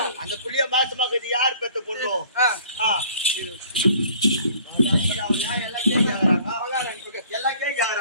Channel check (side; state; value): both; inverted; correlation -0.54